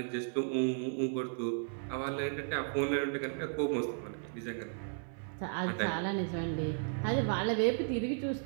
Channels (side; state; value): left; silent; 55 dB below the other